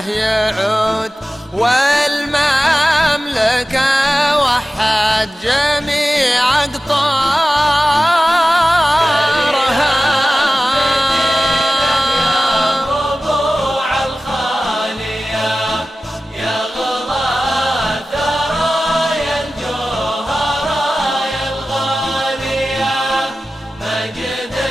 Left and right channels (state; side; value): normal; both; correlation 0.96